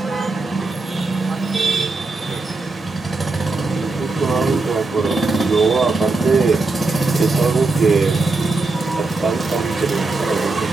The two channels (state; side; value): quieter; left; 3.5 dB